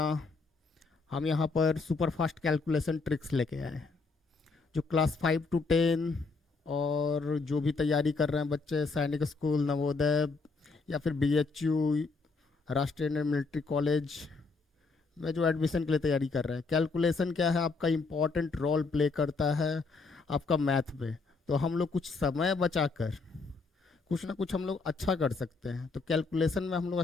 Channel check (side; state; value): right; quieter; 4.2 dB